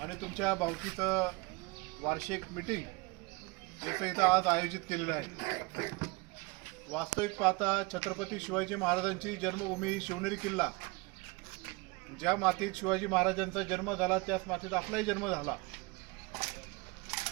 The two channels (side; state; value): left; quieter; 25.6 dB